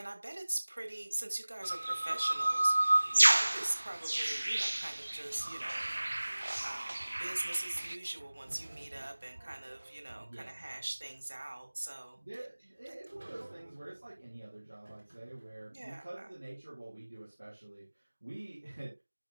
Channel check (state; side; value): inverted; both; correlation -1.00